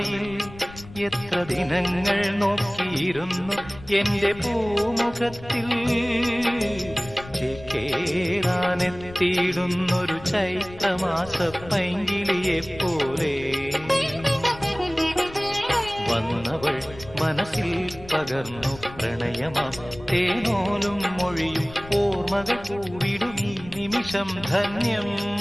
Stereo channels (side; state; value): left; noise; rumble, 17 dB below the sound